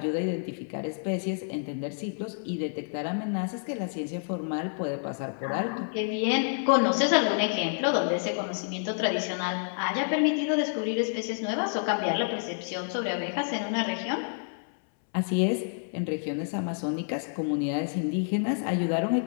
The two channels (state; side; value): silent; right; 59 dB below the other